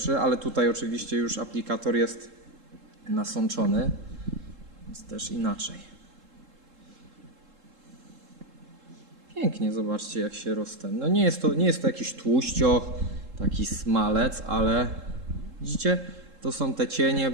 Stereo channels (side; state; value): left; late; 3.7 ms